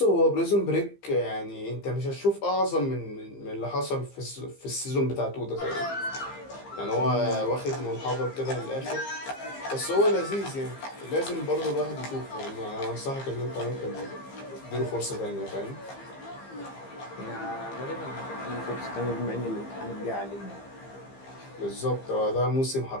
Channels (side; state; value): right; late; 15 ms